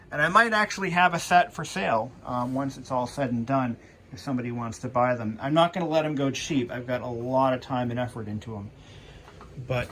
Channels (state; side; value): identical; both; correlation 1.00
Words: And I might actually have a set for sale once it's all said and done, if somebody wants to buy them. I'm not going to let them go cheap. I've got a lot of time and effort into them. But